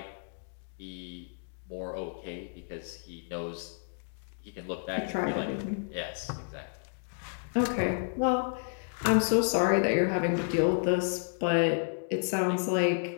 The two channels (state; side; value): silent; right; digital silence